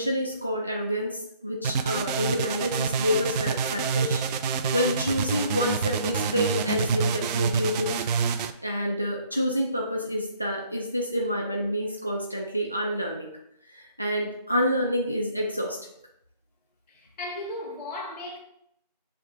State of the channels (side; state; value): both; inverted; correlation -0.62